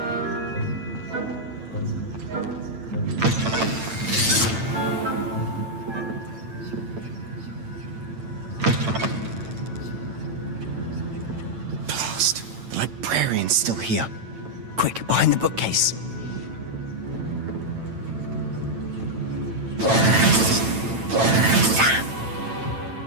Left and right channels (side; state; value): left; late; 9.0 ms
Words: Librarian's still here. Quick, behind the bookcase.